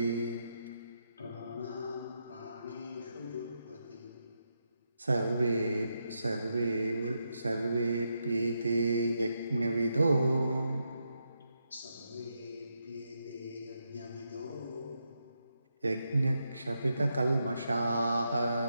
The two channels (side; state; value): both; inverted; correlation -0.83